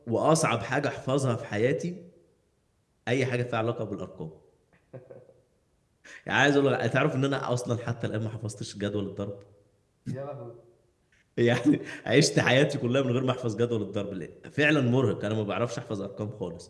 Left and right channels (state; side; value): identical; both; correlation 1.00